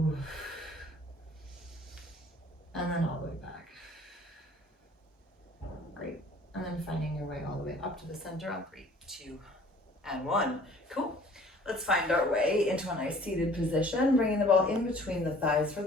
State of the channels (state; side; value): normal; both; correlation 0.52